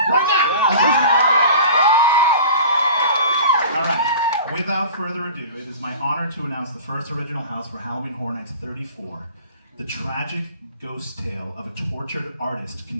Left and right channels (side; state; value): both; inverted; correlation -0.41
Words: now! All right, without further ado, it is my honor to announce the first original house for Halloween Horror Nights 34, the tragic ghost tale of a tortured artist